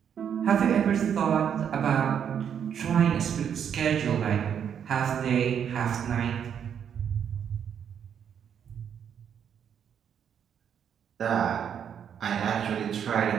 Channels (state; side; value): quieter; left; 8.3 dB